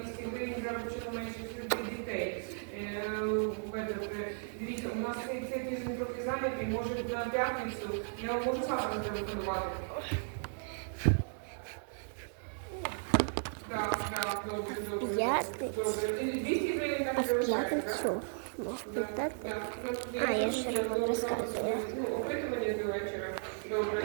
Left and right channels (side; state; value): left; silent; digital silence